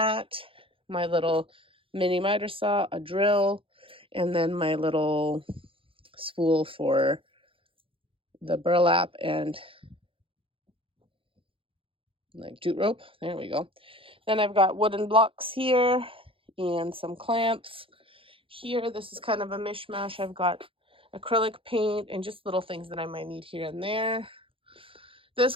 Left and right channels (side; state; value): left; late; 0.26 ms